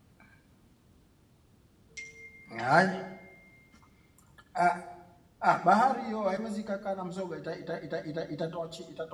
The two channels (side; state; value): both; identical; correlation 1.00